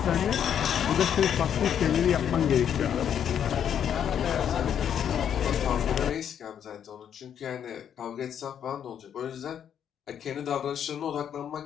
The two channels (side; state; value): right; quieter; 8.9 dB